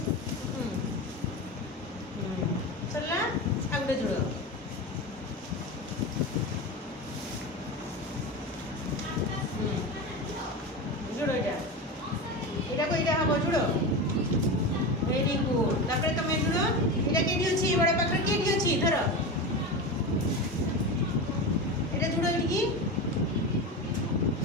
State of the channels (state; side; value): normal; both; correlation 0.23